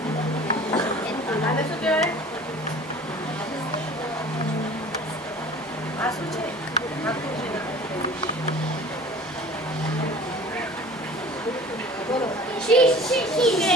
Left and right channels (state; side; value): normal; both; correlation 0.44